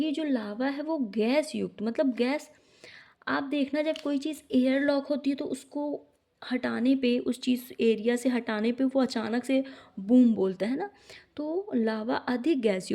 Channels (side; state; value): both; identical; correlation 1.00